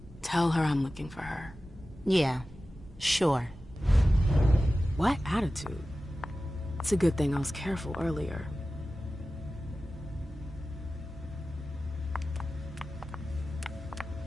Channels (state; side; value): normal; both; correlation 0.95